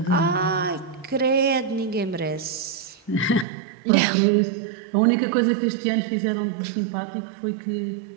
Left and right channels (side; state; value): left; drops out; at 3.5 s